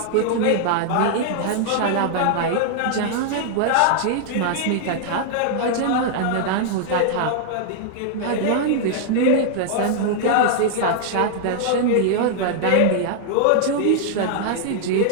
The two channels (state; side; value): different; both; correlation -0.01